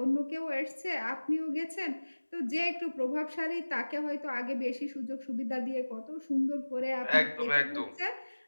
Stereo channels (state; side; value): inverted; both; correlation -1.00